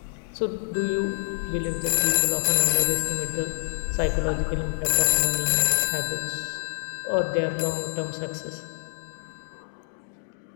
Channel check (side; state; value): right; silent; digital silence